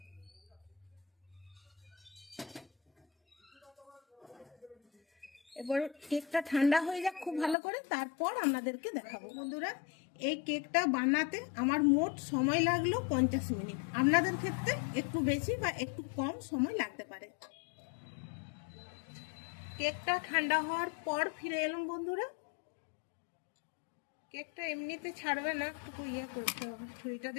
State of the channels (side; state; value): right; drops out; at 7.6 s